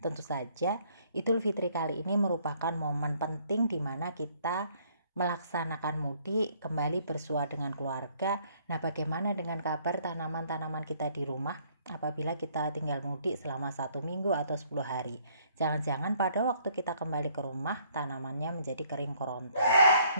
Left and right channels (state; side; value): inverted; both; correlation -0.64